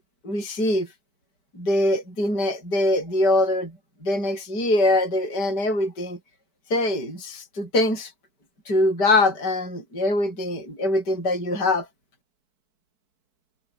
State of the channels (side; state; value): right; late; 4.6 ms